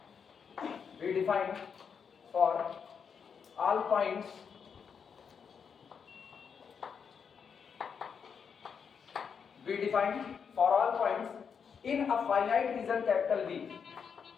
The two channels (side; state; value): right; quieter; 6.6 dB